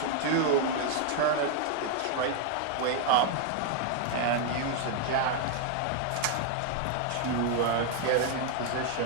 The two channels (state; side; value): different; both; correlation 0.00